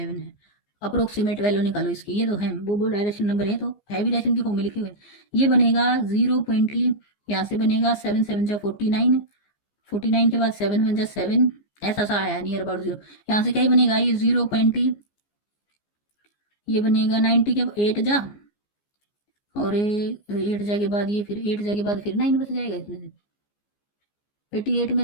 है। अप्रोक्सीमेट वैल्यू निकालो इसकी, ये तो है, वो बोल रहा है रैशनल नंबर है तो है भी रैशन की फॉर्म में लिखे हुए। ये बनेगा 0. यहाँ से बनेगा 7 7 जा 49, 49 के बाद 7 1 जा 7, ऐसा सा आया नियर अबाउट 0। यहाँ से क्या ही बनेगा, ये 0. ये बनेगा 90 के 8 जा, और 8 जा के बाद ये, फिर 8 जा के बाद फिर 9 बच जाएगा, इसमें से 88 में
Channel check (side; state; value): right; late; 14 ms